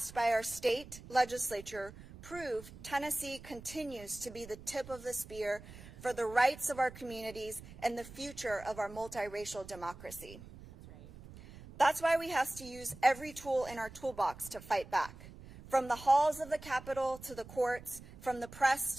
by our state legislature prove Tennessee continues to be the tip of the spear for the rights of our communities and the future of our multiracial democracy. That's right. That's why we have to use every tool in our toolbox to fight back, from the halls of the Capitol to the courts, from the press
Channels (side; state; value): right; noise; rumble, 17 dB below the sound